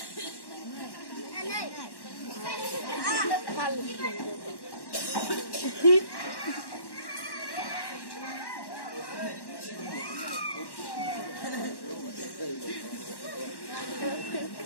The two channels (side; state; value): right; late; 1.1 ms